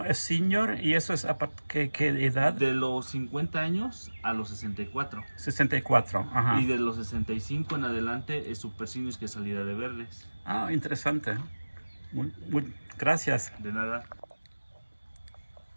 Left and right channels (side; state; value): both; inverted; correlation -1.00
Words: es senior, y eso es a ¿qué edad? De los 50 años a los 64. 64, ajá. Y de los 65 en adelante es super senior, que es salida de verdes. Ah, interesante. Gracias. De nada.